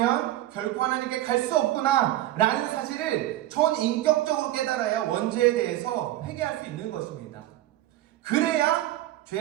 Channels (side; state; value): left; quieter; 14.7 dB